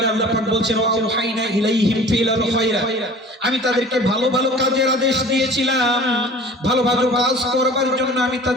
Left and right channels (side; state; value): both; normal; correlation 0.44